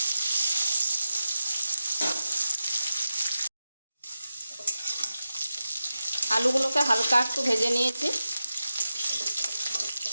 আলুগুলোকে হালকা একটু ভেজে নিয়েছি।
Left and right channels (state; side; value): inverted; both; correlation -0.91